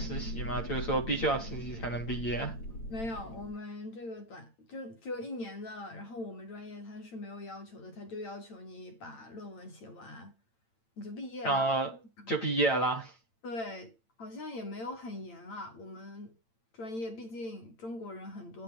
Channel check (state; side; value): late; right; 8.9 ms